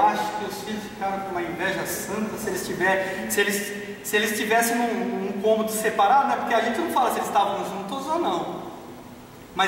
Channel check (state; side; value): identical; both; correlation 1.00